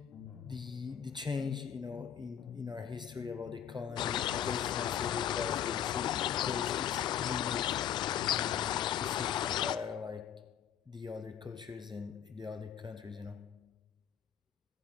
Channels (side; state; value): right; quieter; 9.3 dB